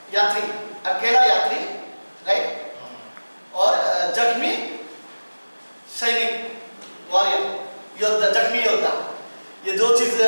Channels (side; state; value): both; inverted; correlation -1.00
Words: यात्री, अकेला यात्री, राइट, और जख्मी सैनिक, वॉरियर, योद्धा, जख्मी योद्धा। ये दो चीज